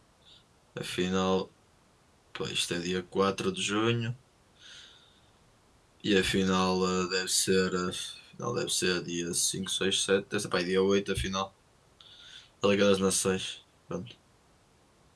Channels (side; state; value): both; identical; correlation 1.00